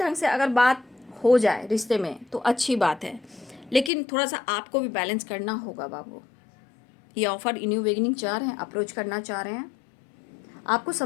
से अगर बात हो जाए रिश्ते में तो अच्छी बात है, लेकिन थोड़ा सा आपको भी बैलेंस करना होगा बाबू। ये ऑफर न्यू बिगिनिंग चाह रहे हैं, अप्रोच करना चाह रहे हैं, आपको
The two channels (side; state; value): right; drops out; at 3.9 s